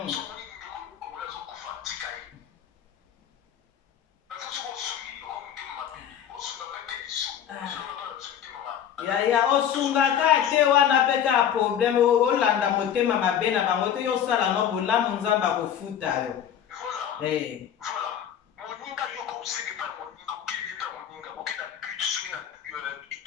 yaya osungaka te wana mpe kaka problème olanda motema mabe na bango te yosala no bolamu nzambe akofuta yo moninga yo kosenge mpa moninga okeli mpa moninga okenda but soki na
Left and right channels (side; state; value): right; quieter; 9.3 dB